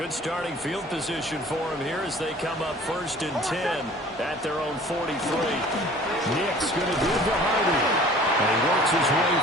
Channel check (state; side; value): normal; both; correlation 0.48